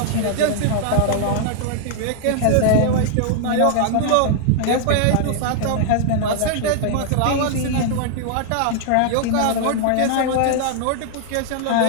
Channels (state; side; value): different; both; correlation 0.00